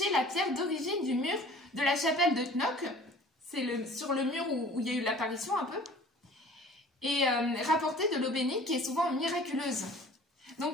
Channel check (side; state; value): both; normal; correlation 0.48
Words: la pierre d'origine du mur de la chapelle de Knock. C'est sur le mur où il y a eu l'apparition un peu. Et rapporter de l'eau bénite qui est souvent miraculeuse.